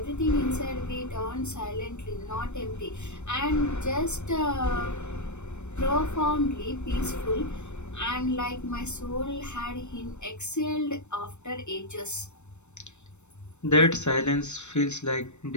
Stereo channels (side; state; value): right; late; 0.82 ms